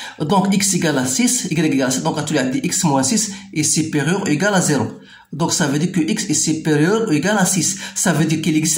Donc x égale à 6, y égale à 6, donc tu as dit x moins 6 est supérieur ou égal à 0. Donc ça veut dire que x est supérieur ou égal à 6. Ça veut dire qu'il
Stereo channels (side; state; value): both; identical; correlation 1.00